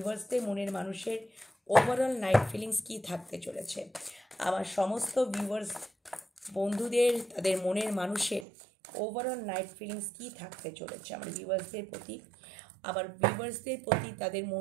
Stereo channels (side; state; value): left; drops out; at 8.5 s